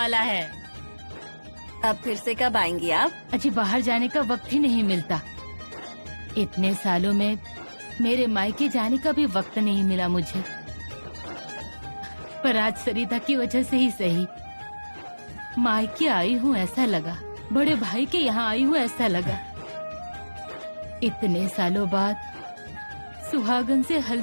है। अब फिर से कब आएंगी आप? अजी बाहर जाने का वक्त ही नहीं मिलता। इतने सालों में मेरे मायके जाने का भी वक्त नहीं मिला मुझे, पर आज सरिता की वजह से ही सही मायके आई हूँ ऐसा लगा, बड़े भाई के यहाँ आई हूँ ऐसा लगा। इतने सालों बाद सुहागन से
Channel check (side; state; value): both; inverted; correlation -1.00